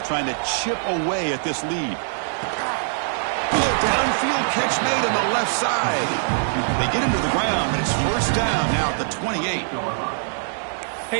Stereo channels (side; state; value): left; silent; 64 dB below the other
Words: trying to chip away at this lead. Downfield catch made on the left side. They get him to the ground, but it's 1st down now at the 28.